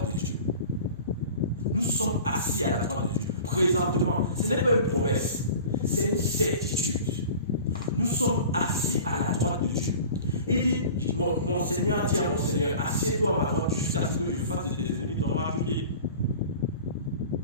de Dieu. Nous sommes assis à la droite de Dieu. Présentement, ce n'est pas une promesse, c'est une certitude. Nous sommes assis à la droite de Dieu. Il dit, mon Seigneur dit à mon Seigneur, assieds-toi à ma droite jusqu'à ce que je fasse de tes ennemis ton marche-pied.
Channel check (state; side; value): inverted; both; correlation -0.40